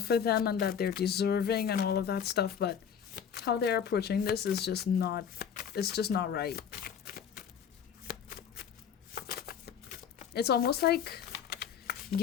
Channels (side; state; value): right; quieter; 7.9 dB